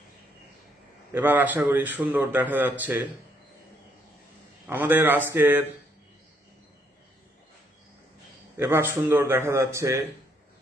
এবার আশা করি সুন্দর দেখা যাচ্ছে। আমাদের আজকের এবার সুন্দর দেখা যাচ্ছে।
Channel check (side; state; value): both; normal; correlation 0.71